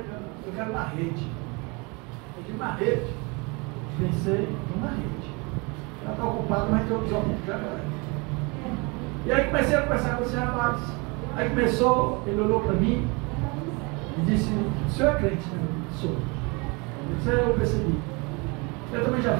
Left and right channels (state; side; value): quieter; left; 28.9 dB